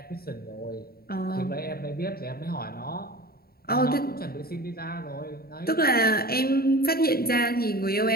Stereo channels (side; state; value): right; late; 0.44 ms